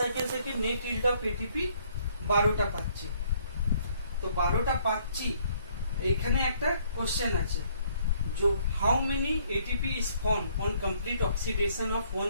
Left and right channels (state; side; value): inverted; both; correlation -0.65